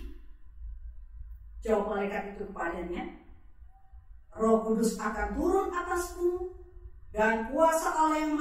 Jawab malaikat itu kepadanya, Roh Kudus akan turun atasmu, dan kuasa Allah yang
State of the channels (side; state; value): both; identical; correlation 1.00